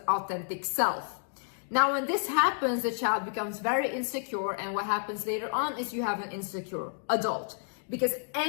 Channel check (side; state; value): right; silent; digital silence